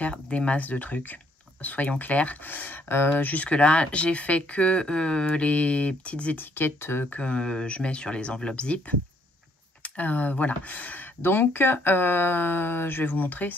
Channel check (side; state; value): both; normal; correlation 0.68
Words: des masses de trucs, soyons clairs. Jusque là j'ai fait que les petites étiquettes que je mets sur les enveloppes zip. Voilà, donc je vais vous montrer